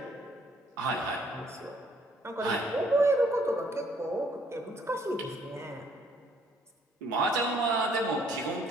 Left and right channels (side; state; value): both; normal; correlation 0.64